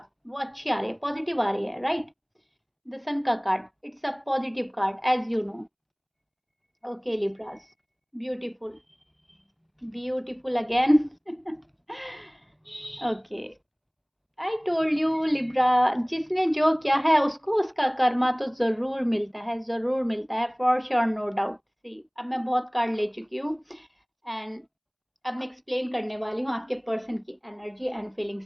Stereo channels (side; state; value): both; identical; correlation 1.00